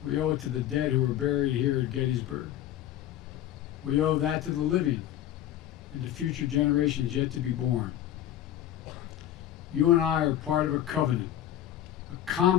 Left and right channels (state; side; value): quieter; right; 12.0 dB